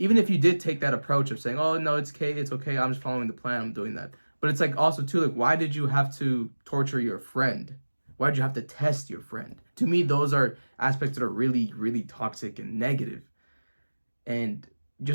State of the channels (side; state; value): both; inverted; correlation -1.00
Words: if you did take that approach of saying, oh no, it's okay, I'm just following the plan, I'm doing that, but it's like also too, like, why did you have to torture your friend? Why did you have to test your friend? To me, those are aspects that are really, really toxic and negative. And